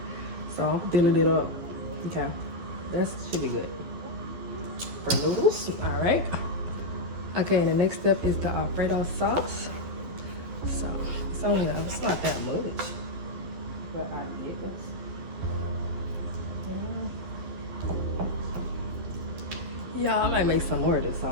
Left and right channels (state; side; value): late; left; 12 ms